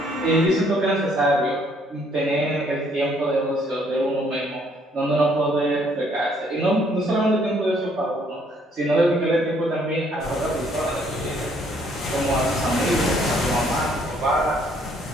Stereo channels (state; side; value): normal; both; correlation 0.65